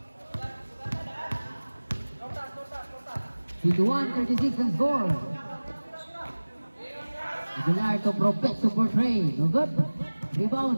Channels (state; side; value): inverted; both; correlation -1.00